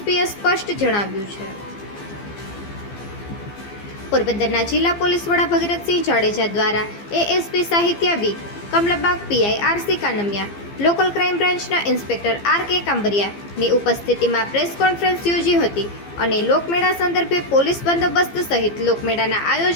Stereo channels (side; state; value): right; late; 15 ms